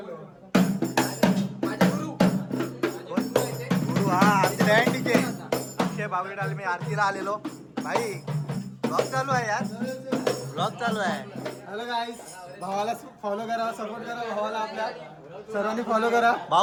गुरु हा आमचे डॅन्डीचे अक्षय बागवेला आले. मी आरतीला आलेलो. भाई ब्लॉग चालू आहे यार. ब्लॉग चालू आहे. हॅलो गाईस, भावाला फॉलो करा, सपोर्ट करा भावाला. आपल्या सर्वांनी फॉलो करा.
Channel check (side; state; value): both; identical; correlation 1.00